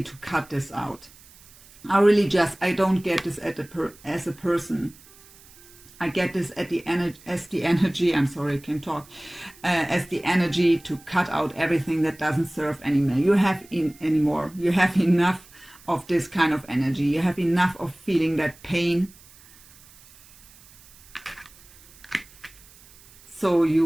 to cut this out. I don't get this as a person. I get this as the energy, I'm sorry, I can't talk, as the energy to cut out everything that doesn't serve anymore. You have enough of this kind of energy. You have enough of feeling that pain. So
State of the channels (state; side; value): noise; right; hiss, 24 dB below the sound